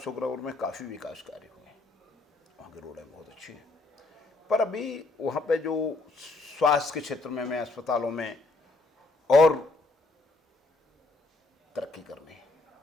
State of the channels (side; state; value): right; quieter; 3.2 dB